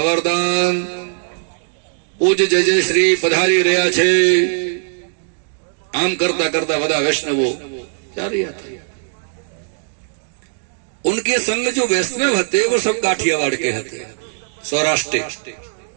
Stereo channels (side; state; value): left; silent; 67 dB below the other